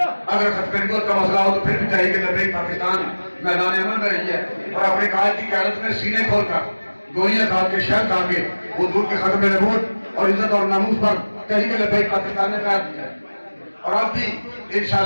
اگر ختم نبوت کا مسئلہ ہو تو پھر بھی تحریک لبیک پاکستان میدان عمل میں رہی ہے اور اپنے قائد کی قیادت میں سینے کھول کر گوئیاں کھا کے شہر کھا کے حضور کے ختم نبوت اور عزت اور ناموس پر تحریک لبیک پاکستان نے قائد کیا ہے اور اب بھی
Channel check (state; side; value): inverted; both; correlation -1.00